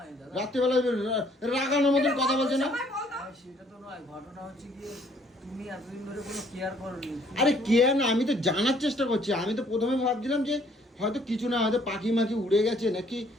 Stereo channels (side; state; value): both; normal; correlation 0.62